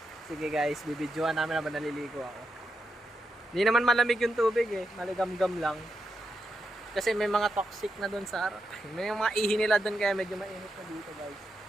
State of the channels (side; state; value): both; normal; correlation 0.85